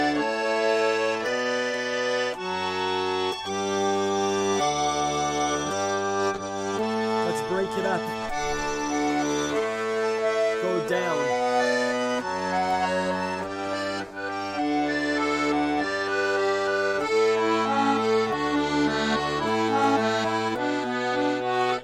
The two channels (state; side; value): identical; both; correlation 1.00